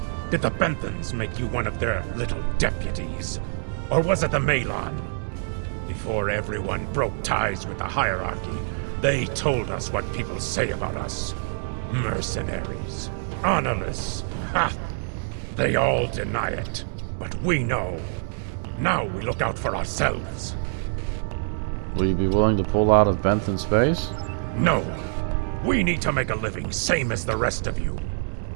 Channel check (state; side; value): silent; left; digital silence